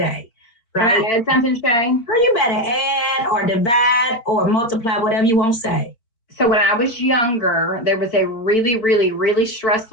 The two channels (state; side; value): late; right; 4.4 ms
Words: Right? Can I add something, Shay? Or you better add or divide or multiply, whatever you want to say. So when I was younger, there was a really, really, really